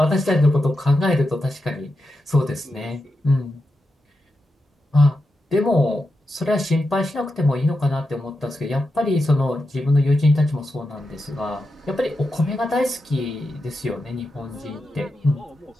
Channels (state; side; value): normal; both; correlation 0.88